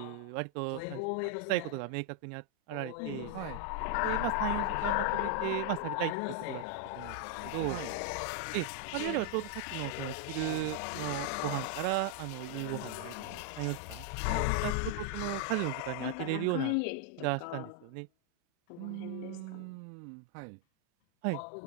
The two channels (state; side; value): different; both; correlation 0.00